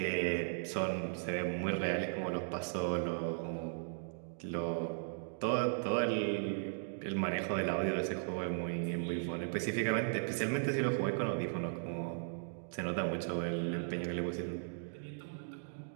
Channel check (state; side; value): silent; left; digital silence